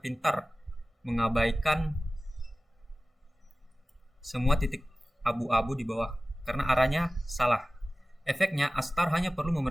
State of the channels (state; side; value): normal; both; correlation 0.97